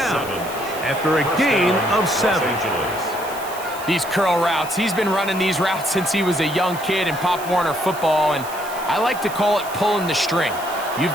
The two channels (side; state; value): right; noise; hiss, 15 dB below the sound